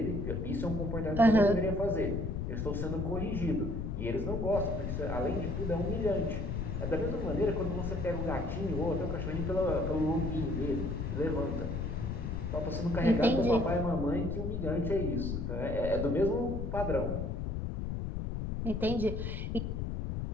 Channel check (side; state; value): left; noise; rumble, 2 dB below the sound